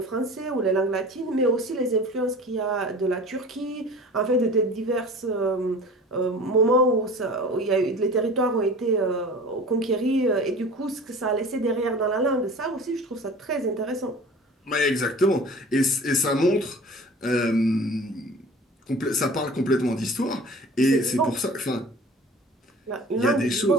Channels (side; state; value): both; normal; correlation 0.41